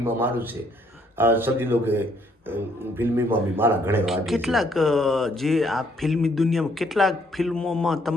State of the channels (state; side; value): normal; both; correlation 0.67